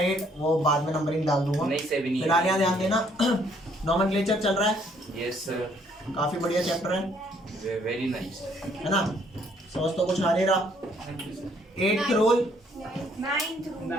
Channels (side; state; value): both; normal; correlation 0.66